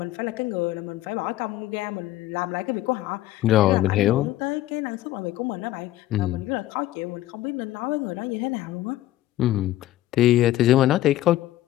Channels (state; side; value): quieter; right; 15.0 dB